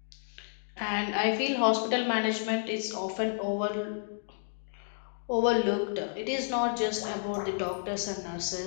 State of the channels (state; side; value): silent; right; digital silence